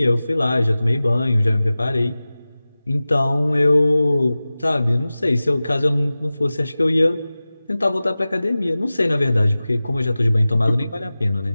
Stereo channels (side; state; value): both; inverted; correlation -0.97